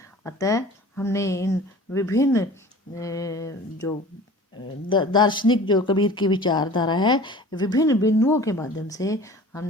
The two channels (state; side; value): normal; both; correlation 0.42